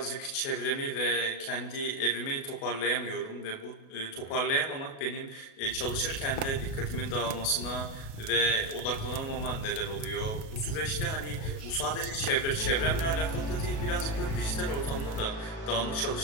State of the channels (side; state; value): right; late; 37 ms